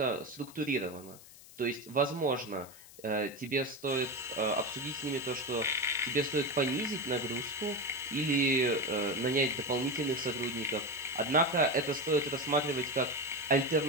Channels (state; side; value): noise; left; hiss, 20 dB below the sound